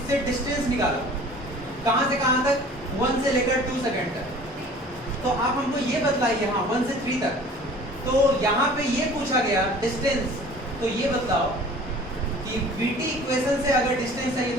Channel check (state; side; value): normal; both; correlation 0.47